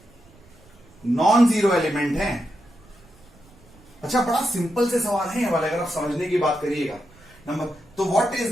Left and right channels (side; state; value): right; noise; rumble, 26 dB below the sound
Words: नॉन जीरो एलिमेंट हैं। अच्छा, बड़ा सिंपल से सवाल है ये वाला, अगर आप समझने की बात करिएगा। नंबर तो what is